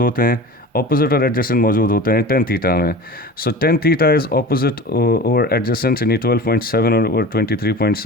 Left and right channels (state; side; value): normal; both; correlation 0.36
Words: होते हैं, ऑपोजिट और एडजेसेंट मौजूद होते हैं tan थीटा में। So tan theta is opposite over adjacent, यानी 12.7 over